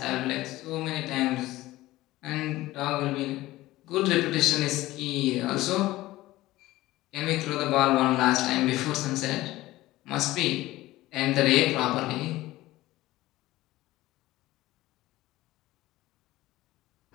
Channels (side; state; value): right; quieter; 17.3 dB